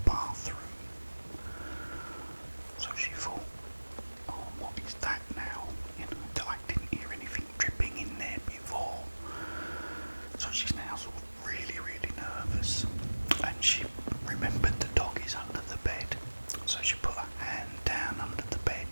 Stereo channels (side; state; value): both; inverted; correlation -1.00